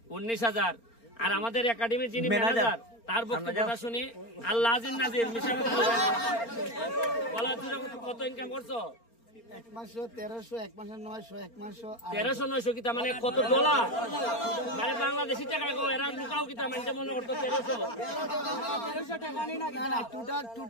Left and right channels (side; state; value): right; late; 4.4 ms